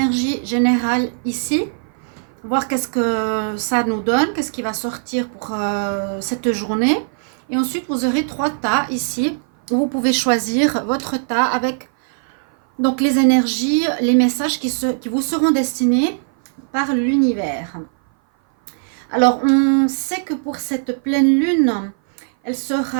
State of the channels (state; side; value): silent; left; 56 dB below the other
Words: générales ici. Voir qu'est-ce que ça nous donne, qu'est-ce qui va sortir pour cette journée. Et ensuite, vous aurez 3 tas ici, où vous pouvez choisir votre tas avec donc les énergies, les messages qui vous seront destinés par l'univers. Alors, on sait que pour cette pleine lune, elle